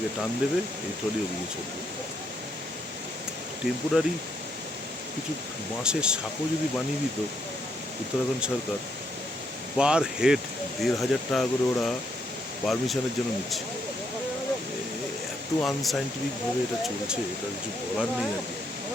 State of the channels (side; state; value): both; normal; correlation 0.75